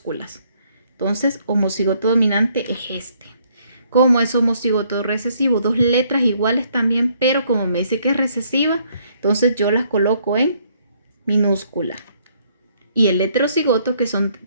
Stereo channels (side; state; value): both; inverted; correlation -0.68